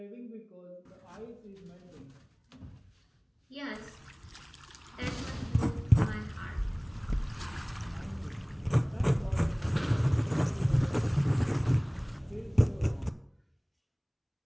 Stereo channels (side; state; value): both; identical; correlation 1.00